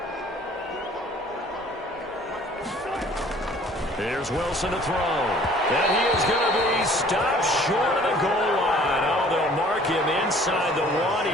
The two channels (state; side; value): normal; both; correlation 0.53